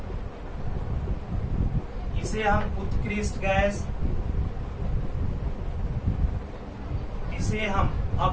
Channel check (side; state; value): both; identical; correlation 1.00